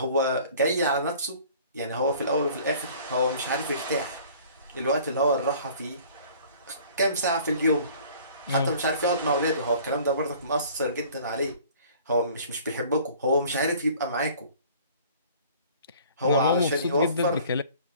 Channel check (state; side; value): inverted; both; correlation -0.50